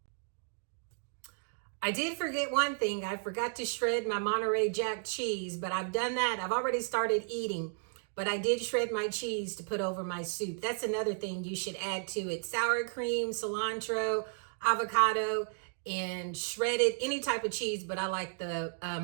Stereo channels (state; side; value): silent; left; 55 dB below the other